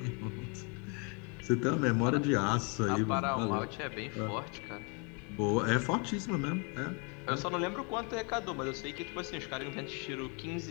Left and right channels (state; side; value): quieter; right; 34.7 dB